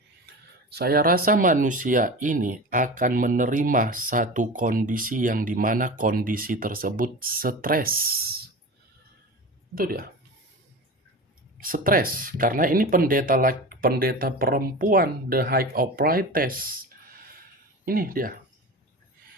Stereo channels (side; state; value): both; normal; correlation 0.30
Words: saya rasa manusia ini akan menerima satu kondisi yang dimana kondisi tersebut stres. Itu dia. Stres. Karena ini pendeta perempuan, The High of Priestess. Ini dia.